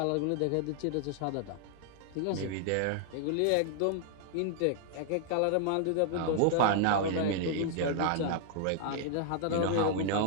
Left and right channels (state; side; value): different; both; correlation 0.00